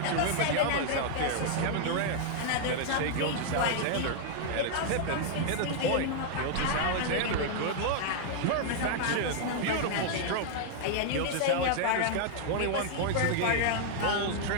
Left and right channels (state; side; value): different; both; correlation -0.01